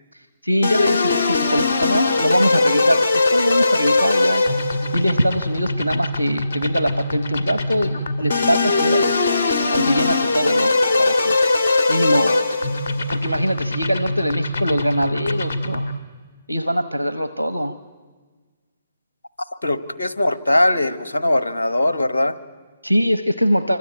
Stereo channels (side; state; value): both; inverted; correlation -0.89